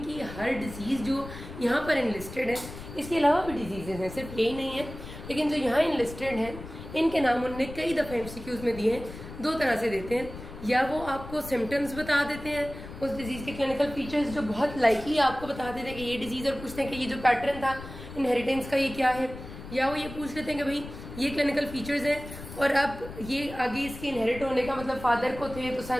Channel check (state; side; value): noise; left; rumble, 13 dB below the sound